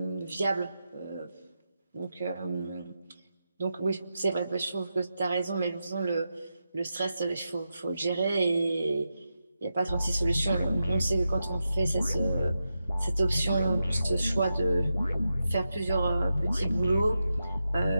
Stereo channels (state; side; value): inverted; both; correlation -0.89